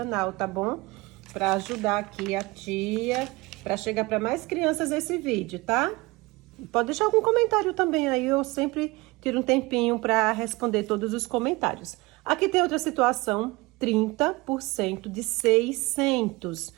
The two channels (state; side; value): quieter; left; 22.9 dB